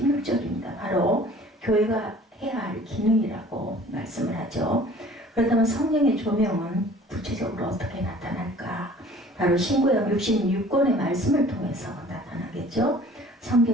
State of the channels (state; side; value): normal; both; correlation 0.49